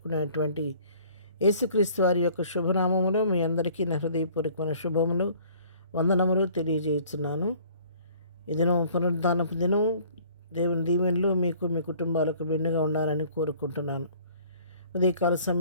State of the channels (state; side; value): inverted; both; correlation -0.54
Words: యేసుక్రీస్తు వారి యొక్క శుభనామములో మీ అందరికీ నా హృదయపూర్వకమైన శుభములు, వందనములు తెలియజేస్తున్నాను. ఈ దినం పునరుద్ధానపు దినం. దేవుని దీవెనలు మీకు మీ కుటుంబాలకు మెండుగా ఉండాలని కోరుకుంటున్నాను. ఉదయకాల